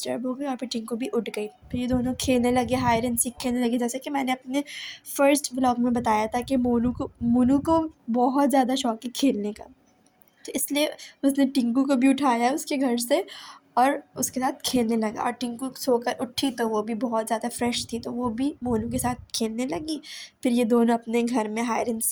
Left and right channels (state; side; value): identical; both; correlation 1.00